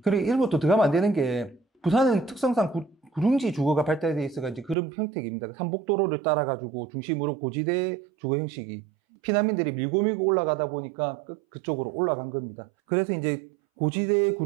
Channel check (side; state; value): left; drops out; at 4.8 s